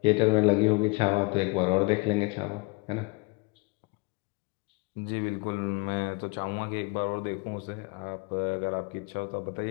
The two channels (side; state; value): right; quieter; 27.3 dB